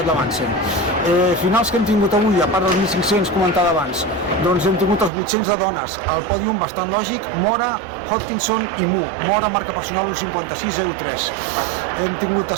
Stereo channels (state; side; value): drops out; left; at 5.1 s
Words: Lamansen. Finals que hem tingut avui, a part dels 1.500 comentada abans, doncs hem tingut els 800 de dones, el pòdium bastant lògic, Mora, Hodgkinson i Mu. Mora marca personal 1:56:03. Hem tingut